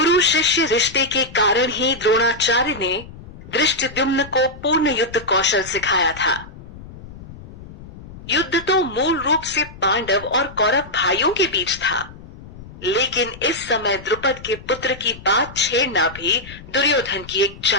शिष्य रिश्ते के कारण ही द्रोणाचार्य ने धृष्टद्युम्न को पूर्ण युद्ध कौशल सिखाया था। युद्ध तो मूल रूप से पांडव और कौरव भाइयों के बीच था, लेकिन इस समय द्रुपद के पुत्र की बात छेड़ना भी दुर्योधन की एक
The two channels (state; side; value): noise; left; rumble, 17 dB below the sound